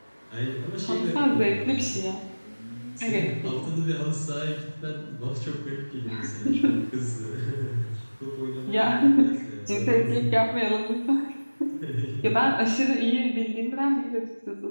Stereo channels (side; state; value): both; inverted; correlation -1.00